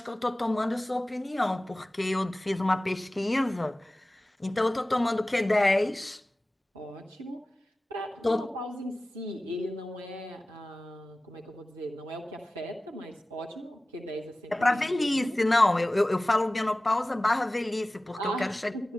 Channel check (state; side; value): normal; both; correlation 0.97